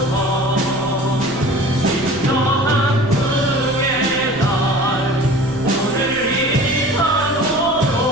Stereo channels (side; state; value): left; noise; rumble, 18 dB below the sound